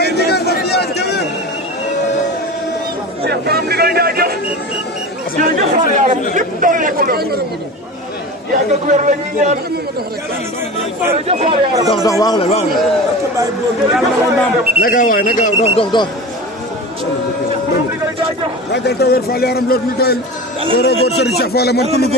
ndigal na fi yàgg tëwër Cheikh Borom ndigal jaajëf jërëjëf Fall yaaram lépp doole ko doon yàgg ak wér la ñuy ñaan jërëjëf Fall yaaram dox waaw la naka waay naka dox ragal tëwër Fall yaaram loolu ñu doyal góor góor Serigne Cheikh Fall man ku ñu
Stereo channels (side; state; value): both; normal; correlation 0.31